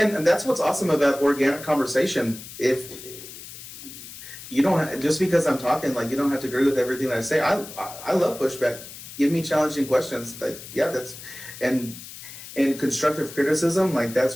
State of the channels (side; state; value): left; noise; hiss, 14 dB below the sound